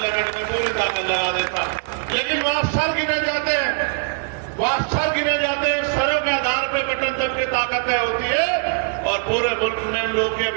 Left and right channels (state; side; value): quieter; left; 37.6 dB